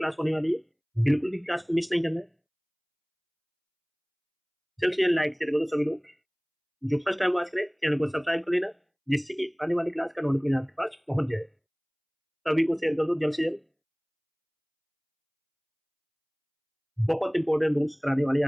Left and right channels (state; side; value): identical; both; correlation 1.00